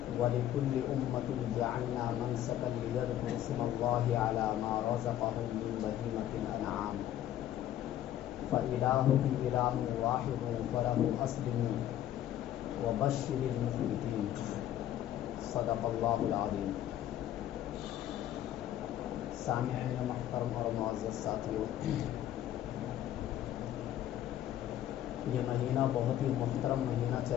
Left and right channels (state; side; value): quieter; right; 12.0 dB